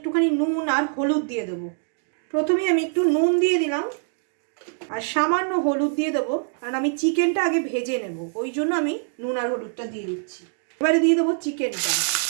নুন আর হলুদ দিয়ে দেবো। প্রথমে আমি একটু নুন দিয়ে দিলাম আর সামান্য হলুদ দিয়ে দেবো, কারণ আমি চিকেনটা আগে ভেজে নেব, ওই জন্য আমি নুন আর হলুদটা দিয়ে দিচ্ছি। এবারে দিয়ে দেবো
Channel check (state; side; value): silent; left; digital silence